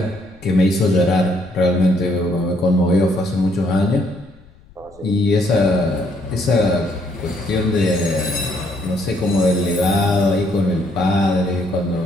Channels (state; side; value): noise; left; rumble, 25 dB below the sound